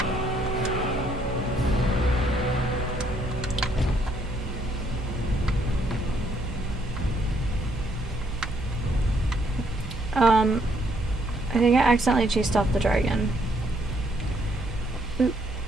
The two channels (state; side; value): normal; both; correlation 0.70